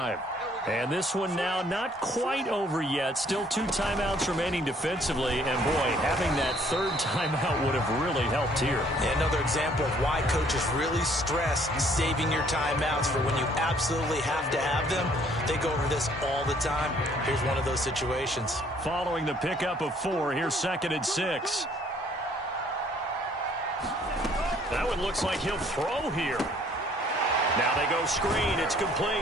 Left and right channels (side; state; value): both; normal; correlation 0.61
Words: And this one now not quite over yet. Still 2 timeouts remaining defensively. And, boy, having that 3rd timeout would have really helped here. Yeah, another example of why coaches really stress saving your timeouts for when you absolutely have to have them. They go over this all the time. Here's one of those situations. Following the pickup of 4, here's 2nd and 6. That one looks like he'll throw here. Now they go screen. It's